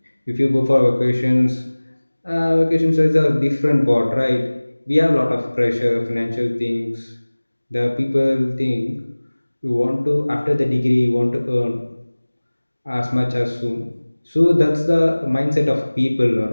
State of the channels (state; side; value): inverted; both; correlation -1.00